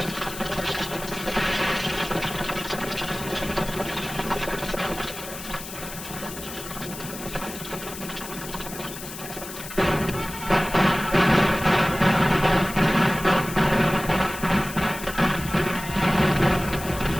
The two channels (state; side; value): noise; left; hiss, 11 dB below the sound